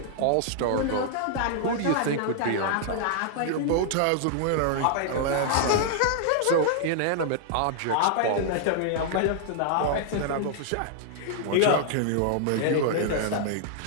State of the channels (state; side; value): different; both; correlation 0.00